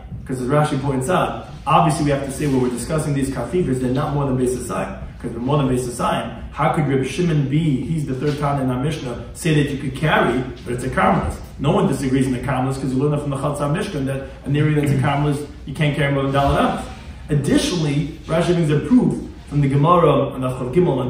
Because as Rashi points out, obviously we have to say when we're discussing these karfifas, they're not more than Beis Hasayim. Because they're more than Beis Hasayim, how could Rabbi Shimon be, he's the third Tana in our Mishnah, say that you could carry, but it's a Carmelist? No one disagrees in the Carmelist because we learned from the Chatzah Mishnah that an area that's a Carmelist, you can't carry more than Dalet Amos. Additionally, Rashi brings a proof from the Gemara on the Chav Gimel and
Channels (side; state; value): both; identical; correlation 1.00